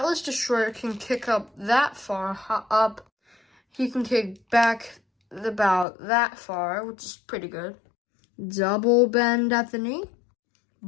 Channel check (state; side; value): drops out; right; at 5.9 s